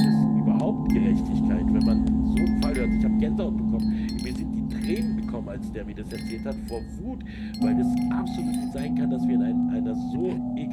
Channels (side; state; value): both; identical; correlation 1.00